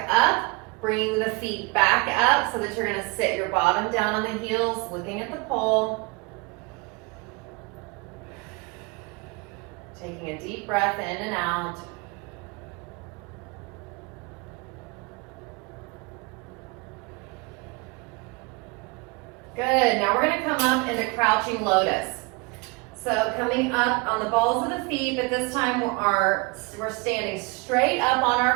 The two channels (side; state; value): left; quieter; 28.4 dB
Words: up. Bring the feet back up so that you're going to sit your bottom down on the heels, looking at the pole. Taking a deep breath in and out. Good. Now we're going to come up into crouching lotus. So coming up on the balls of the feet, but this time we're standing straight up on